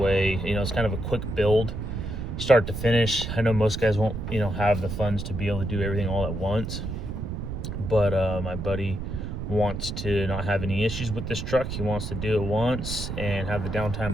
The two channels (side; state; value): right; noise; rumble, 5 dB below the sound